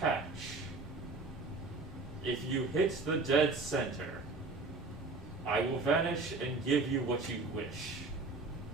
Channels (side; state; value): left; quieter; 3.6 dB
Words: If you hit the dead center, I will vanish and give you what you wish.